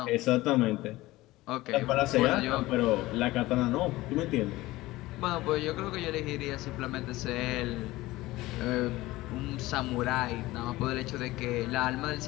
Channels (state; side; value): quieter; right; 18.5 dB